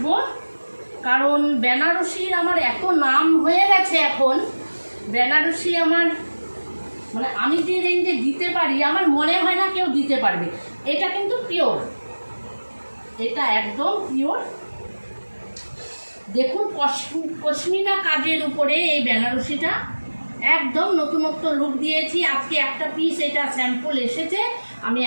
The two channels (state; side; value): inverted; both; correlation -1.00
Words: কারণ বেনারসির আমার এত নাম হয়ে গেছে এখন। বেনারসি আমার মানে আমি যে রেঞ্জে দিতে পারি আমার মনে হয় না কেউ দিতে পারবে। এটা কিন্তু পিওর, এটা একদম পিওর। দেখুন পশমিনা কাজের উপরে এই বেনারসিটা একদম নতুনত্ব লুক দিয়েছি। আজকে একটা পিস এটা স্যাম্পল এসেছে, আমি